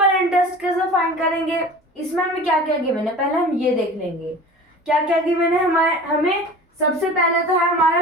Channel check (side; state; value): both; normal; correlation 0.39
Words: इंटरेस्ट कैसे फाइंड करेंगे, इसमें हमें क्या क्या गिवन है पहले हम ये देख लेंगे। क्या क्या गिवन है हमें सबसे पहले तो है